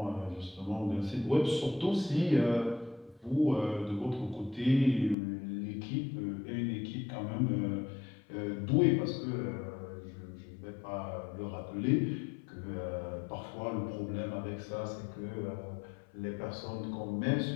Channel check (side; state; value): right; drops out; at 5.2 s